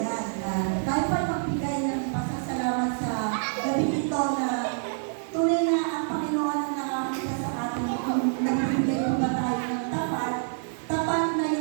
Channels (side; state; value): left; silent; 57 dB below the other